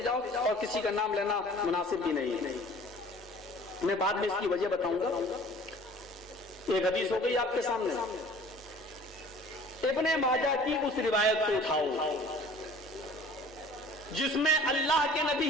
جاؤ، اور کسی کا نام لینا مناسب بھی نہیں. میں بعد میں اس کی وجہ بتاؤں گا. ایک حدیث ہو گئی آپ کے سامنے. ابن ماجہ کی اس روایت کو اٹھاؤ جس میں اللہ کے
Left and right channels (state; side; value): normal; both; correlation 0.48